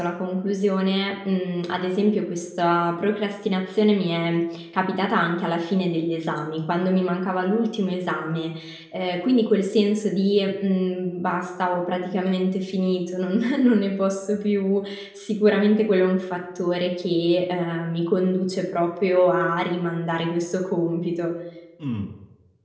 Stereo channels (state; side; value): identical; both; correlation 1.00